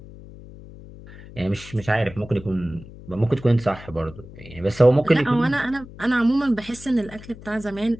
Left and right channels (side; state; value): left; noise; hum, 17 dB below the sound